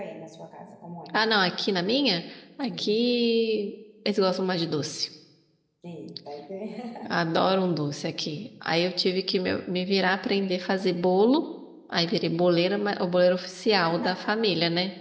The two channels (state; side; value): identical; both; correlation 1.00